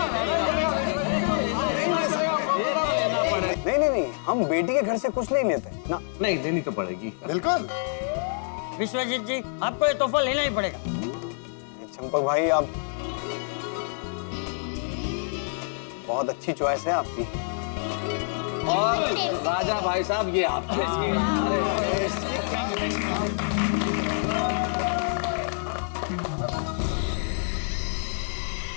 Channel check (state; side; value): silent; right; 60 dB below the other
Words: नहीं नहीं नहीं, हम बेटी के घर से कुछ नहीं लेते ना। नहीं, लेनी तो पड़ेगी। बिल्कुल। विश्वजीत जी, आपको ये तोहफा लेना ही पड़ेगा। चंपक भाई, आप बहुत अच्छी चॉइस है आपकी। और राजा भाई साहब, ये आपके।